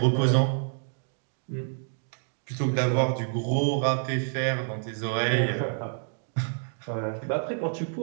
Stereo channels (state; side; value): silent; left; 59 dB below the other